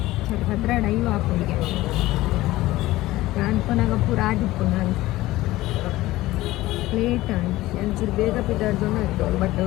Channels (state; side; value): quieter; right; 17.3 dB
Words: 15 ಹಾಕೊಂಡಿಗೆ ನಾನು ಕೊನಾಗ ಪೂರ ಆದಿಪ್ಪು ನಾನು ಲೇಟ್ ಆಂಡ್ ಒಂಚೂರು ಬೇಗ ಪಿದಾಡ್ದೊಂದು ಆಯಿತು ಬಟ್